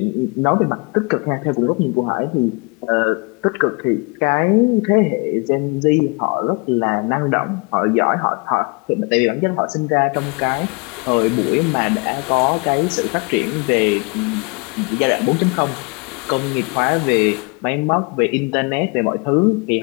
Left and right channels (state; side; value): quieter; right; 31.2 dB